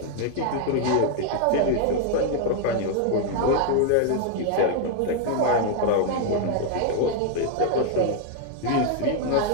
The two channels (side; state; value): both; different; correlation 0.00